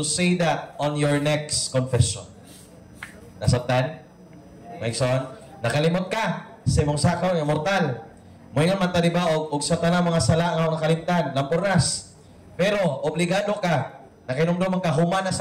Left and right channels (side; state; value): both; identical; correlation 1.00